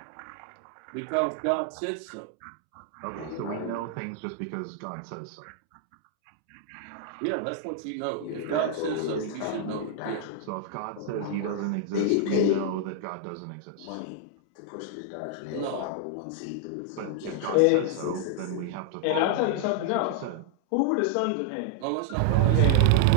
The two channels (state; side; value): different; both; correlation 0.00